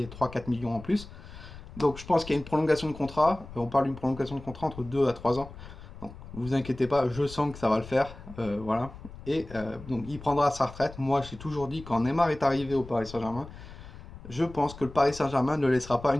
millions en plus. Donc je pense qu'il y a une prolongation de contrat. On parle d'une prolongation de contrat entre 2 à 3 ans. Donc, vous inquiétez pas, je sens que ça va le faire. Voilà. Et donc, il prendra sa retraite. Moi, j'ai toujours dit, quand Neymar est arrivé au Paris Saint-Germain, je pense que le Paris Saint-Germain ne laissera pas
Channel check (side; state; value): left; noise; rumble, 15 dB below the sound